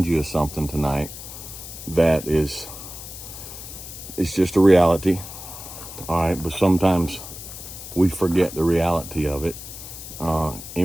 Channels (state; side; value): noise; left; hiss, 12 dB below the sound